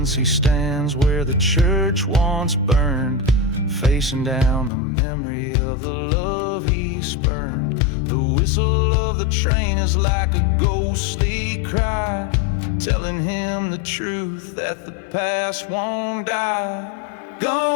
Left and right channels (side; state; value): right; drops out; at 4.7 s